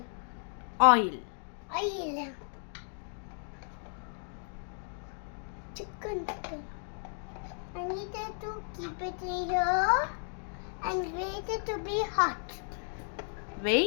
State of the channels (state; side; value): silent; right; 55 dB below the other